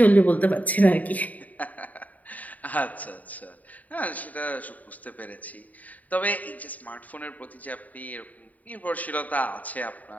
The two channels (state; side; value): late; right; 0.075 ms